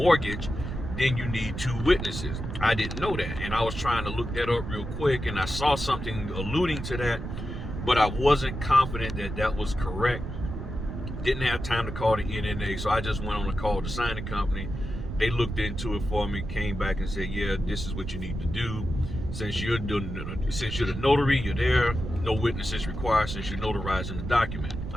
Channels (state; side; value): noise; right; rumble, 6 dB below the sound